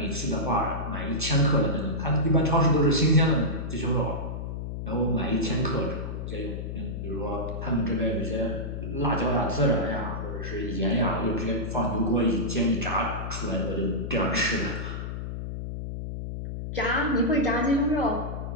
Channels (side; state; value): left; noise; hum, 6 dB below the sound